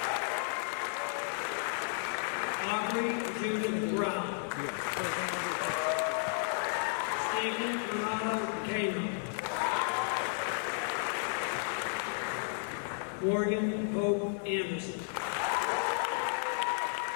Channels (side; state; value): right; silent; digital silence